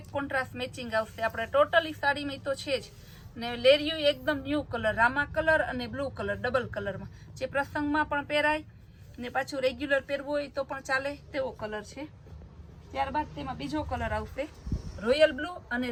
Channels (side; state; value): both; identical; correlation 1.00